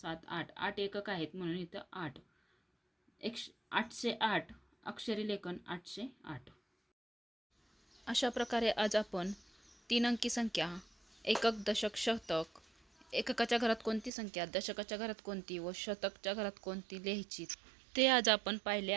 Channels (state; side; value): drops out; left; at 14.1 s